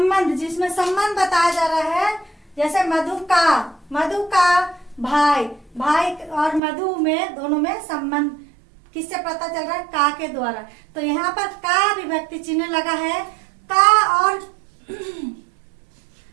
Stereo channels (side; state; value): left; drops out; at 6.6 s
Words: जिसमें संबंध बताया जा रहा है। जैसे मधु का भाई, भाई और मधु में, दोनों में संबंध किससे पता चल रहा है, का के द्वारा। तो यहाँ पर का विभक्ति चिन्ह लगा है, का और